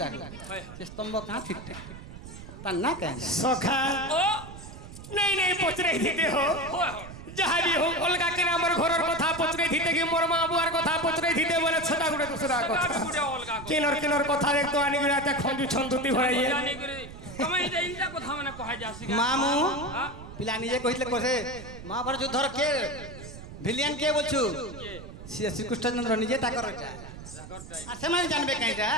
से स्तंभ कहां ठीक ता ना कहना सखा नहीं नहीं पचरे दिते हो जहां भी हो अलगा के हमर घरर कथा पचरे दिते कि मोर मां बुआर कथा पचरे दिते बोले छटा गुडे दूसरा कथा किनर कथा देख तो आनी गुडा त खंजू छंदुती होइए तमे इटा कथा माने कहा जासी मामू पिला निजे कहितले कोसे महाभारत युद्धर के ভিলিয়ান কে বলছু শ্রী কৃষ্ণচন্দ্র নিজে তা করটা আর সেমানে জানবে কাইটা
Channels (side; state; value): right; noise; rumble, 14 dB below the sound